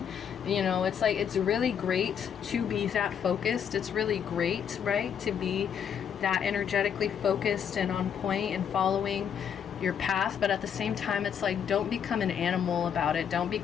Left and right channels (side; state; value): right; quieter; 8.1 dB